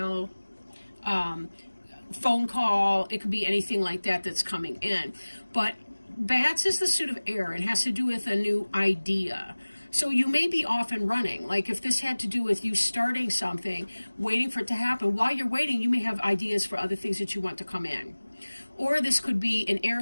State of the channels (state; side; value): inverted; both; correlation -1.00